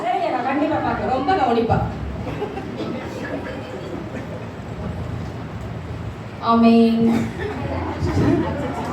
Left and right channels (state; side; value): identical; both; correlation 1.00